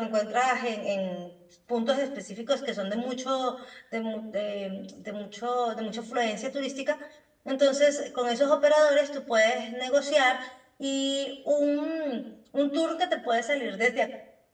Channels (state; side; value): identical; both; correlation 1.00